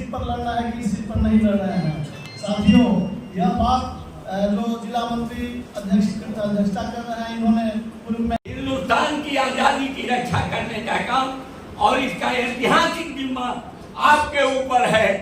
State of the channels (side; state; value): both; identical; correlation 1.00